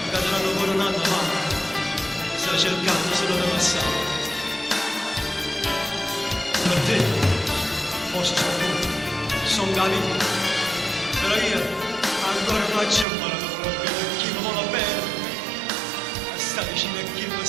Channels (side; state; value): left; drops out; at 13.1 s